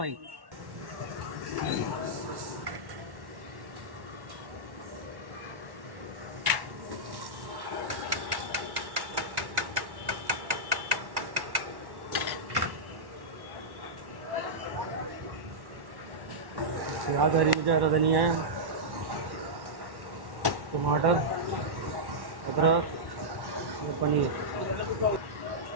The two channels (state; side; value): late; left; 1.1 ms